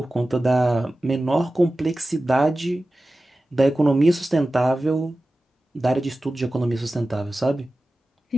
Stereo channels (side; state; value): both; normal; correlation 0.95